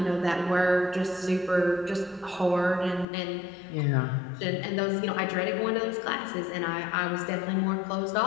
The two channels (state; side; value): drops out; right; at 3.1 s